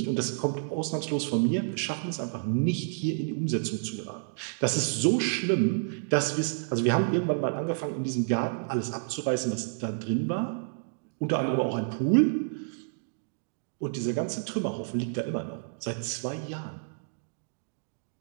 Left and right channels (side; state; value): left; silent; digital silence